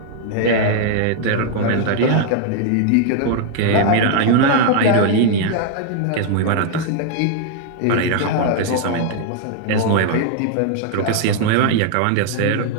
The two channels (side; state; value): both; different; correlation 0.00